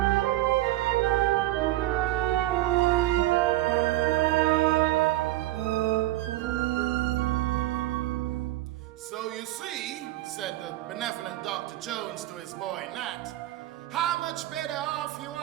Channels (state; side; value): quieter; left; 16.8 dB